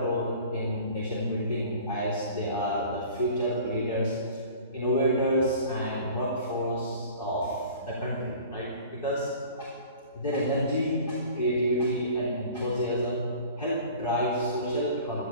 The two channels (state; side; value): inverted; both; correlation -0.45